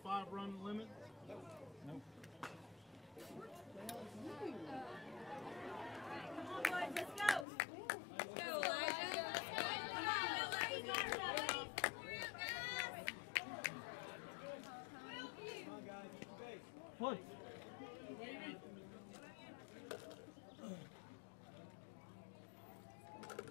run limit? Nope. Come on, boys, let's go. Push.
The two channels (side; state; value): right; drops out; at 7.5 s